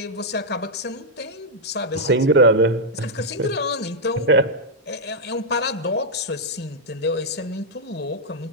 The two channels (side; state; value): both; normal; correlation -0.04